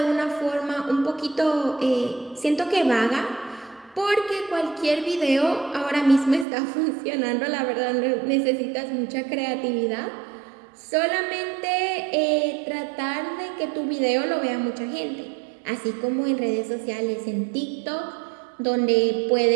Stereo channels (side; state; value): left; drops out; at 6.5 s